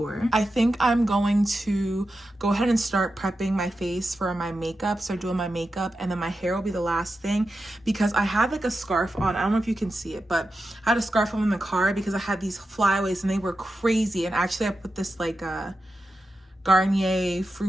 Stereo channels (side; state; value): both; normal; correlation 0.90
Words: I think I'm going to go ahead and start prepping my face for my makeup, start doing my makeup, and then my hair will be the last thing, because I had like a scarf on. I don't know if you can see it, but I had a scarf on in the car because I had these flyaways and they were crazy. And actually I put this like Garnier